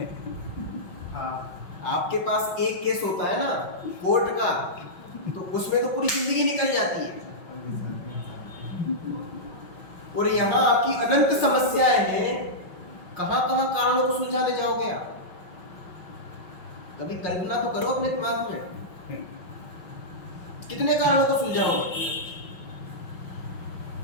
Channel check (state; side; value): late; right; 5.7 ms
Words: आपके पास एक केस होता है ना कोर्ट का, तो उसमें तो पूरी जिंदगी निकल जाती है। और यहाँ आपकी अनंत समस्याएं हैं, कहां कहां कारणों को सुलझाने जाओगे आप? कभी कल्पना तो करो अपने दिमाग में, कितने कारणों को सुलझाओगे?